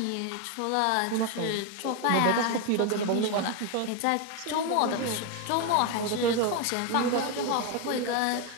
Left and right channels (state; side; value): different; both; correlation 0.02